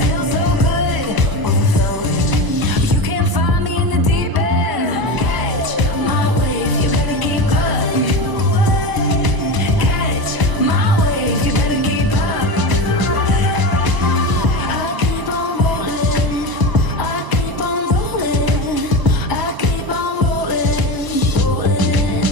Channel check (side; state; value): left; late; 1.0 ms